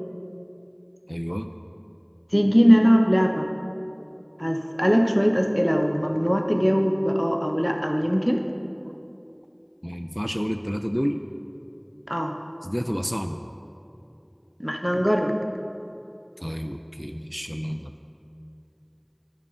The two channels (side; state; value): both; identical; correlation 1.00